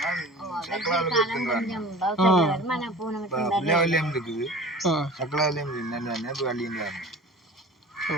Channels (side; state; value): both; normal; correlation 0.40